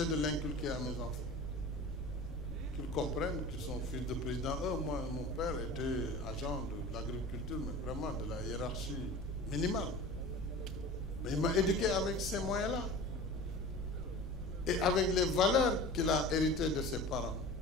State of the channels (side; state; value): left; noise; rumble, 10 dB below the sound